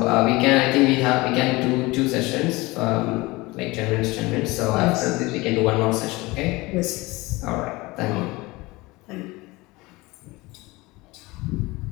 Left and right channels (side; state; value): right; quieter; 22.1 dB